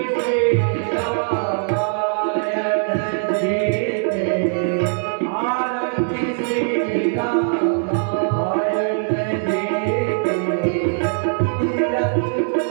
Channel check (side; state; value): left; silent; digital silence